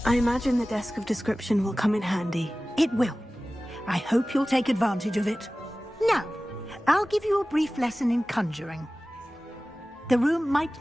I imagine the desk of description will come in handy. It will. I hope you'll take advantage of it. Now, I'll give you a brief lesson in conjuring. The room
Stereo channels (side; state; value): both; normal; correlation 0.97